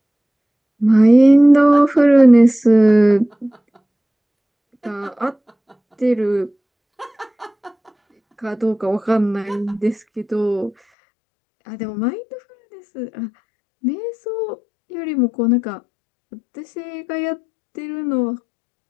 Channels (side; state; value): right; drops out; at 10.8 s